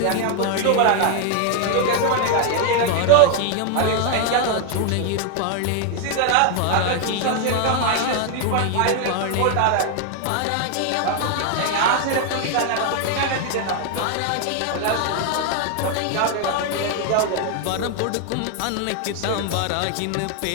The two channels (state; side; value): different; both; correlation 0.00